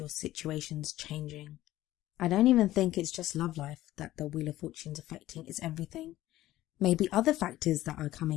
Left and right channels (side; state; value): right; quieter; 15.2 dB